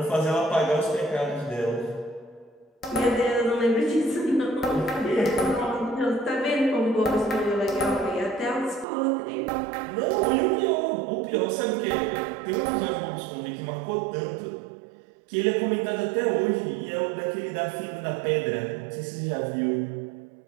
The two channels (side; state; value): left; drops out; at 8.8 s